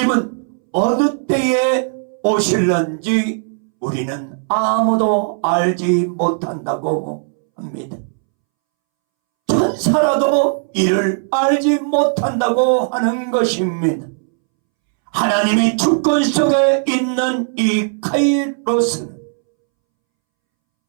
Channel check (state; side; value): silent; left; 66 dB below the other